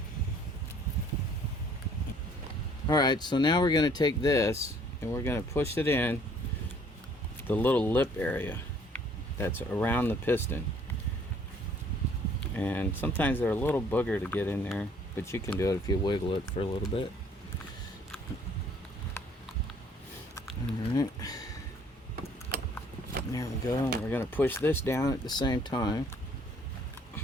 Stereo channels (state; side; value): normal; both; correlation 0.59